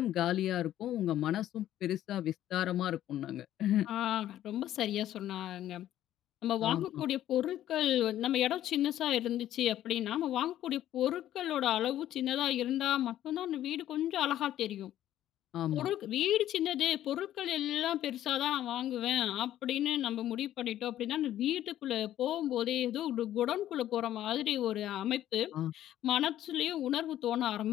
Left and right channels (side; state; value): right; quieter; 12.4 dB